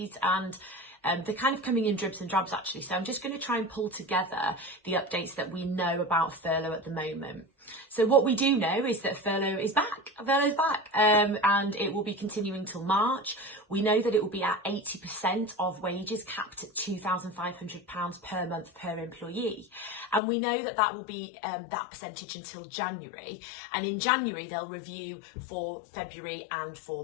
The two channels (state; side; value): drops out; right; at 20.2 s